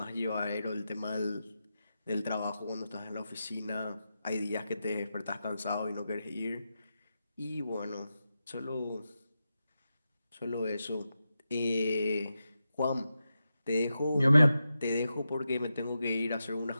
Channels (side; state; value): both; inverted; correlation -0.89